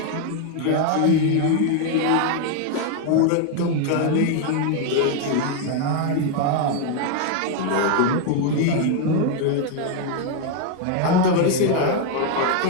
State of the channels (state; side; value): different; both; correlation 0.01